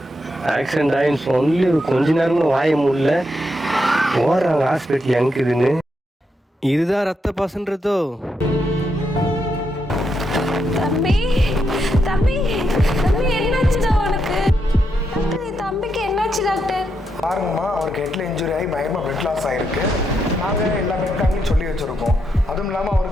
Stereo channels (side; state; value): both; normal; correlation 0.82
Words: ஆக்சிடென்ட் ஆகின்னு சொல்லி கொஞ்ச நேரம் கூட வாய முடியல, போடுறாங்க ஹாஸ்பிட்டல் எங்குதுன்னு. இதுதான் ரத்த பாசன்றதோ? தம்பி தம்பி தம்பி என்னாச்சுடா உனக்கு? தம்பிக்கு என்னாச்சு டாக்டர்? பாருங்கம்மா, அவருக்கு ஹெட்டில் இன்ஜுரி ஆகி பயங்கரமாக பிளட் லாஸ் ஆகிருக்கு. நாங்கள் எல்லா பிளட் சொல்லி வச்சுருக்கோம். அதுவும் இல்லாமல்